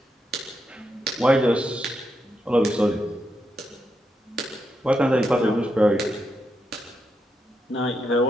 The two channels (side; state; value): both; normal; correlation 0.83